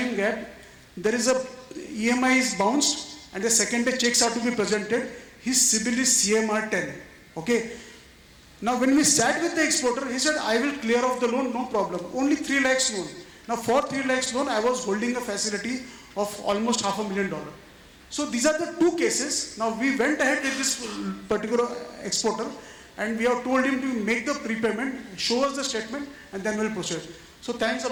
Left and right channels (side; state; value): both; identical; correlation 1.00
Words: gap, there is a EMI is bounced and the second day checks are to be presented. His CIBIL is CMR 10, okay. Now, when we sat with the exporter, he said, I will clear off the loan, no problem. Only 3 lakhs loan. Now, for 3 lakhs loan, I was holding a facility of almost $500,000. So, these are the 2 cases. Now, we went ahead with this particular exporter and we have told him to make the prepayment, show us the statement, and then we'll proceed. So, thanks a